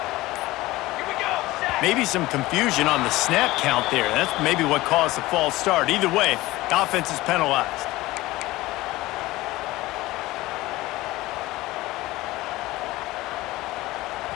Maybe some confusion on the snap count there. That's maybe what caused the false start. Either way, the offense is penalized.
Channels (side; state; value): right; quieter; 18.6 dB